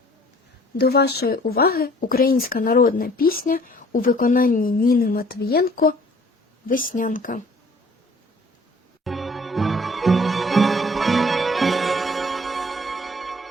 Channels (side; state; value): both; normal; correlation 0.54